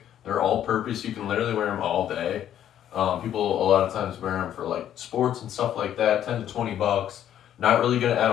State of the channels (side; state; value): right; quieter; 10.7 dB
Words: They're all purpose. You can literally wear them all day. People a lot of times wear them for like sports and stuff like that, 10 to 20 bucks. Not really going to add